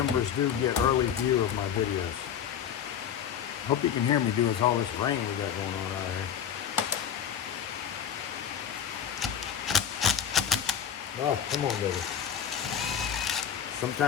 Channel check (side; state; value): right; quieter; 8.6 dB